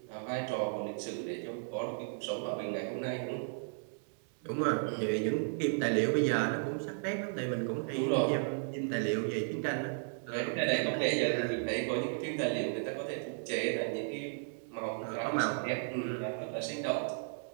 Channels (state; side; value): silent; left; digital silence